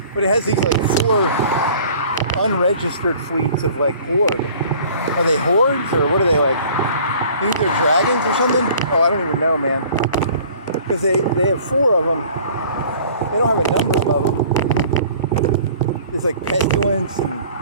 But it has these like 4 unregistered fleets of like horde. Are they hordes or what are they like? You think they're dragons or something? Oh, I don't even know, man. Because they have 4 of them. They don't have a number of them. It's like pestilence and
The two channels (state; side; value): inverted; both; correlation -0.50